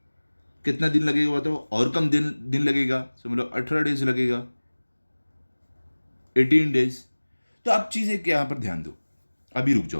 कितना दिन लगेगा बताओ, और कम दिन लगेगा, समझ लो 18 डेज लगेगा, 18 डेज। तो अब चीज़ें क्या यहाँ पर ध्यान दो, अभी रुक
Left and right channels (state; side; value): inverted; both; correlation -1.00